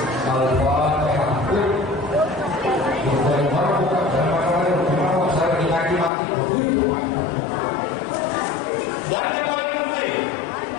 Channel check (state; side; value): drops out; right; at 6.1 s